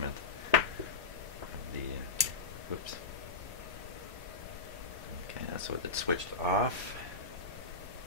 of the, whoops. Okay, that's what it switched off.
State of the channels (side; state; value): right; quieter; 4.4 dB